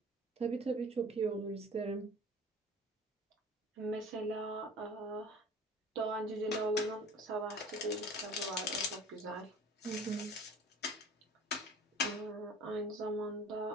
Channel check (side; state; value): both; normal; correlation 0.44